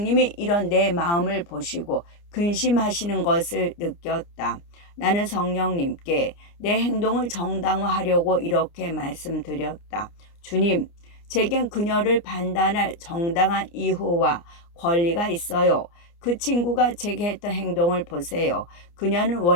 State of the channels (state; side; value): late; right; 29 ms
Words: 이런 내 마음을 보시고 근심하시는 것을 느꼈다. 나는 성령님께 내 행동을 정당화하려고 이렇게 말씀드렸다. 주님, 제겐 그녀를 판단할 정당한 이유와 권리가 있어요. 그 친구가 제게 했던 행동을 보세요. 그녀는